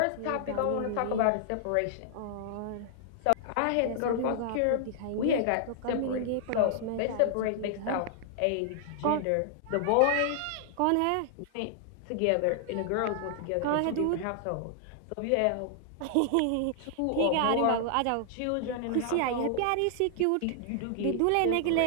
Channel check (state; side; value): different; both; correlation -0.01